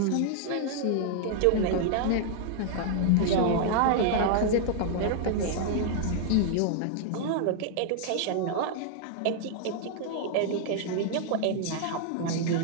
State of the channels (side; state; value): both; different; correlation 0.00